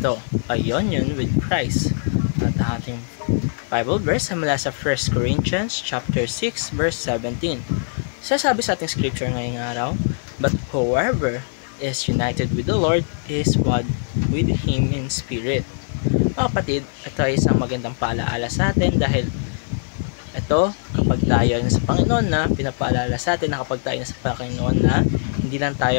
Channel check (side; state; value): right; silent; digital silence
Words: a union with Christ. At ang ating Bible verse ay mula sa 1 Corinthians chapter 6 verse 17. Sasabi sa ating scripture ngayong araw, "But whoever is united with the Lord is one with Him in spirit." Mga kapatid, ito ay isang magandang paalaala sa atin dahil ito, kapag tayo ay nasa Panginoon na, pinapaalala sa atin na kapag tayo nasa Panginoon na, hindi lang